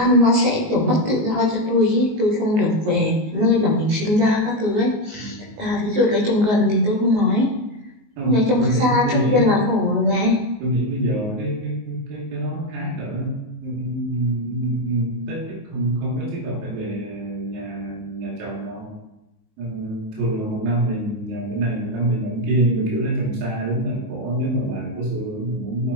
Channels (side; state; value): left; late; 19 ms